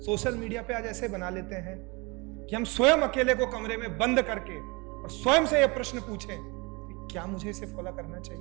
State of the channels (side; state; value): left; quieter; 27.4 dB